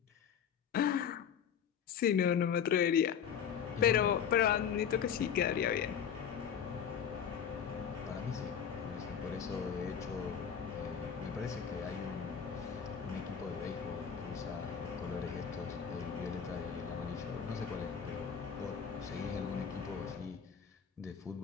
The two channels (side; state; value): right; quieter; 7.8 dB